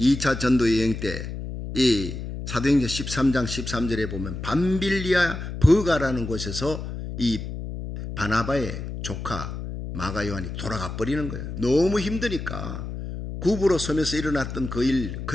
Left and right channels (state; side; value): noise; left; hum, 7 dB below the sound